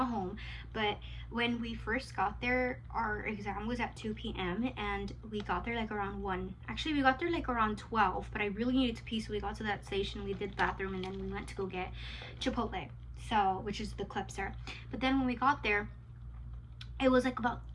home, but when we first got there, our exam was at 2 p.m. and we got there like around 1. Actually, we got there like around 12, but I really needed to pee, so we got to that station, we did bathroom, and then we went to go get Chipotle. so which is the clipser. But then when we got there, it was like about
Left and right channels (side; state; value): both; identical; correlation 1.00